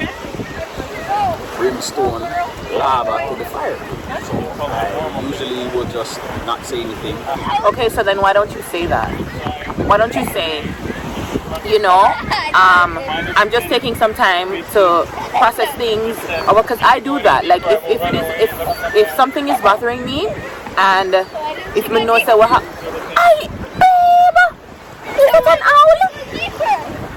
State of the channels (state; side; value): identical; both; correlation 1.00